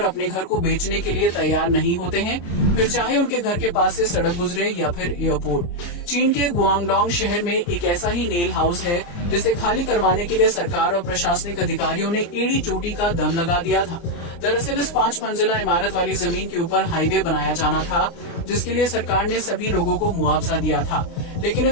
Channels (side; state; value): right; late; 29 ms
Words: अपने घर को बेचने के लिए तैयार नहीं होते हैं, फिर चाहे उनके घर के पास से सड़क गुजरे या फिर एयरपोर्ट। चीन के गुआंगडोंग शहर में एक ऐसा ही नेल हाउस है, जिसे खाली करवाने के लिए सरकार और प्रशासनिक अधिकारियों ने एड़ी चोटी का दम लगा दिया था। दरअसल इस 5 मंजिला इमारत वाली जमीन के ऊपर हाईवे बनाया जाना था, जिसके लिए सरकार ने सभी लोगों को मुआवजा दिया था। लेकिन